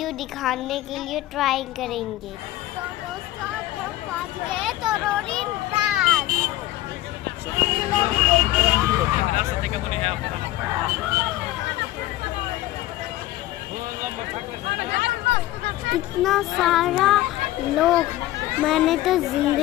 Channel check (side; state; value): right; quieter; 16.0 dB